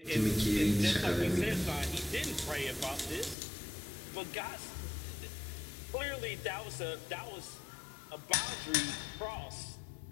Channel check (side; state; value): right; drops out; at 3.4 s